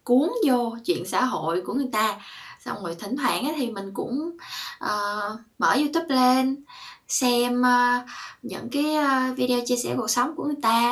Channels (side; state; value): both; identical; correlation 1.00